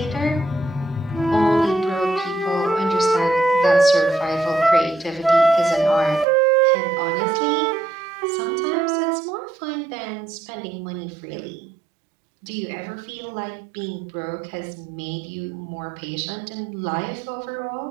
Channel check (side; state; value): left; drops out; at 6.2 s